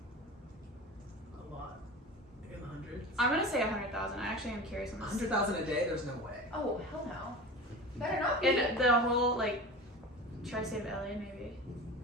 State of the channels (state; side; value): normal; both; correlation 0.33